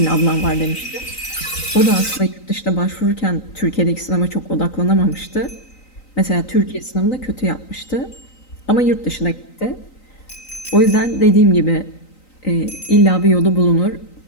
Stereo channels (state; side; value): late; right; 3.9 ms